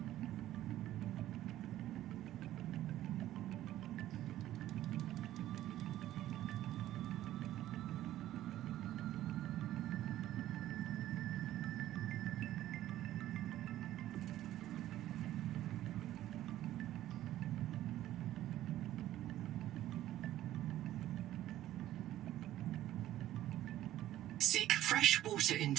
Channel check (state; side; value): quieter; left; 13.7 dB